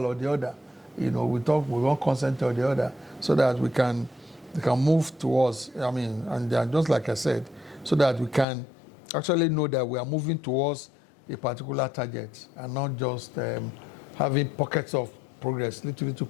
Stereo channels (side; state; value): right; drops out; at 8.5 s